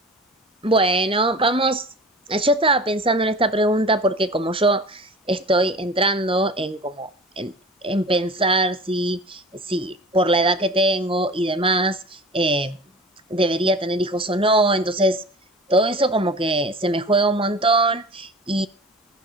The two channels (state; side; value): normal; both; correlation 0.38